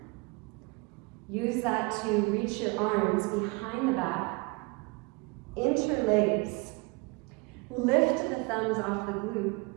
Use that to reach your arms behind the back, interlace. Lift the thumbs off the glute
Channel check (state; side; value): quieter; left; 28.1 dB